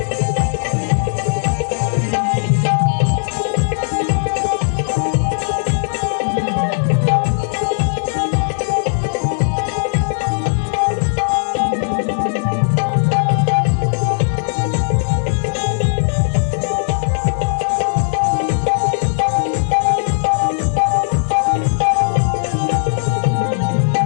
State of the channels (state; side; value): silent; right; 61 dB below the other